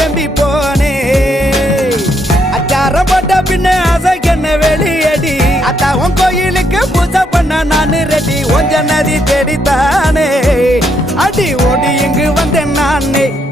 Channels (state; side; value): normal; both; correlation 0.75